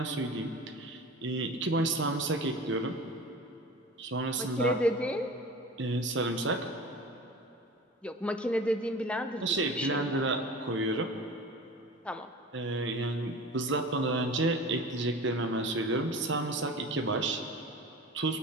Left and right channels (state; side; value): normal; both; correlation 0.37